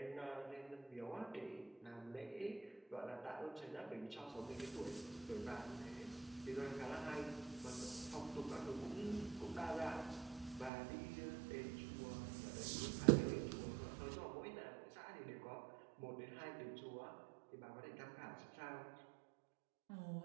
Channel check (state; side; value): drops out; left; at 10.7 s